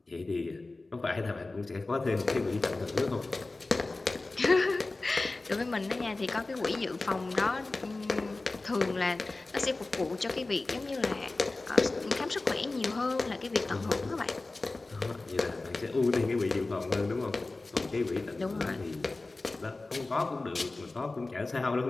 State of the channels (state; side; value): quieter; right; 3.3 dB